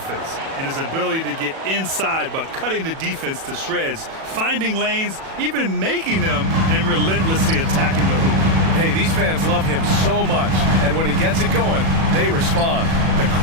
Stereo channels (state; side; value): late; left; 37 ms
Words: and his ability to get inside by cutting the defense to shreds, finding lanes, even making them, and relentlessly attacking the hoop. Hey, these fans love him so much, and when he gets it going, they respond. The